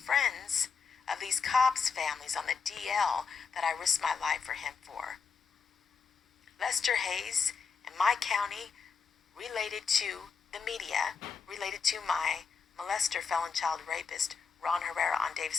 of these cops' families on the DL that I risked my life for him for. Lester Hayes in my county related to the media, related to my molester, felon, child rapist, Ron Herrera on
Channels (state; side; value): quieter; right; 5.7 dB